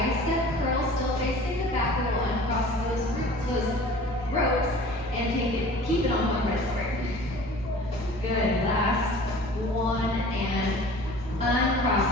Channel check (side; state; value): right; noise; hum, 14 dB below the sound